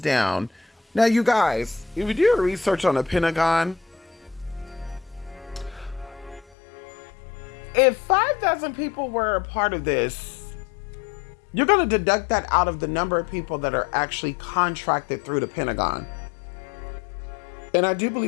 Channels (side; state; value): right; drops out; at 6.6 s